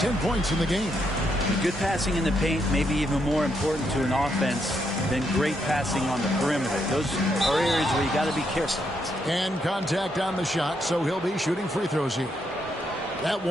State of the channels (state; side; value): normal; both; correlation 0.78